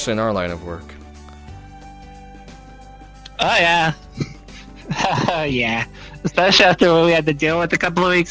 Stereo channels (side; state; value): both; identical; correlation 1.00